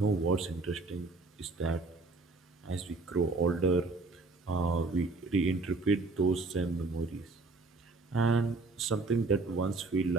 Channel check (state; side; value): quieter; left; 3.6 dB